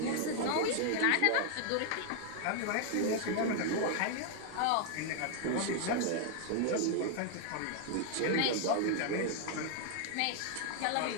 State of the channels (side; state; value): both; different; correlation 0.00